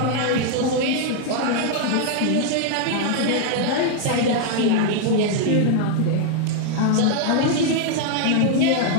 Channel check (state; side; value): different; both; correlation 0.00